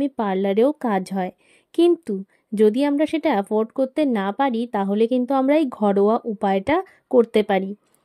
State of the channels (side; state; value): both; identical; correlation 1.00